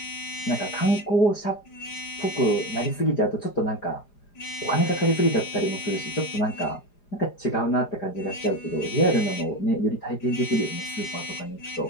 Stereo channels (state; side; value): late; right; 4.9 ms